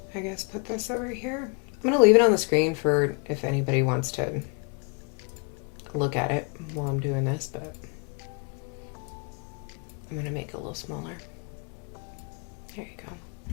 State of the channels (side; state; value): right; quieter; 36.1 dB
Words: I guess, put this over here. I'm gonna leave it on the screen for if anybody wants to look at it while I'm doing this, but I'm gonna make it a little smaller. There you go.